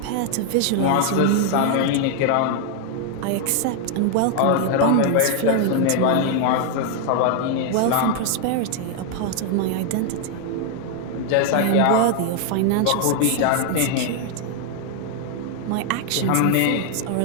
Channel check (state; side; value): different; both; correlation 0.00